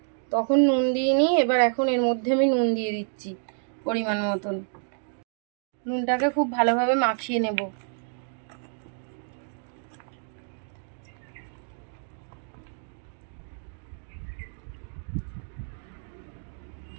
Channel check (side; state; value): left; silent; 57 dB below the other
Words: তখন নুন দিইনি, এবার এখন এর মধ্যে আমি নুন দিয়ে দিচ্ছি পরিমাণ মতন। নুনটাকে খুব ভালোভাবে মাখিয়ে নেব।